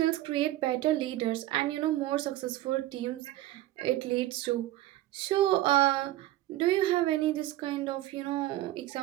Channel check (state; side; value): quieter; left; 15.5 dB